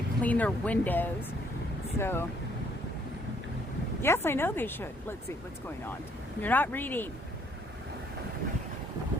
clean their windows. So, yes, I know they should. Let's see what's going on. You're not reading.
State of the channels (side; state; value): both; normal; correlation 0.66